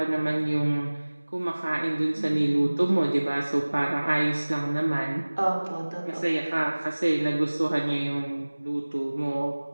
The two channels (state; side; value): inverted; both; correlation -1.00